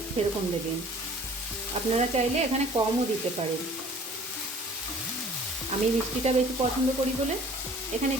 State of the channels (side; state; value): both; normal; correlation 0.50